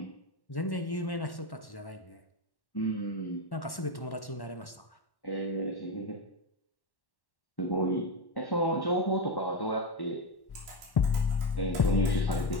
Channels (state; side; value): late; right; 1.1 ms